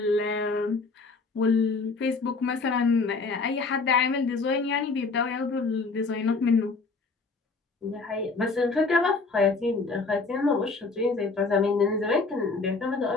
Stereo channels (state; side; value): quieter; right; 4.1 dB